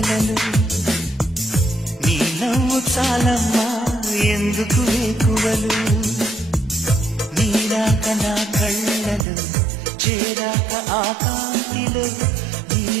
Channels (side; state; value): left; drops out; at 9.2 s